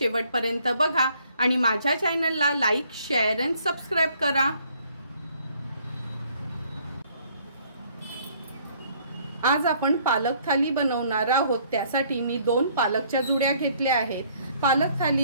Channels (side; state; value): both; inverted; correlation -0.62